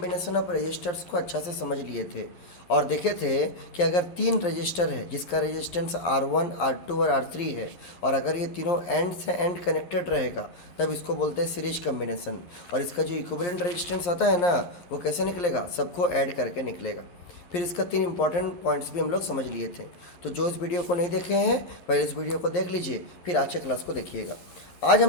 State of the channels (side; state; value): right; late; 11 ms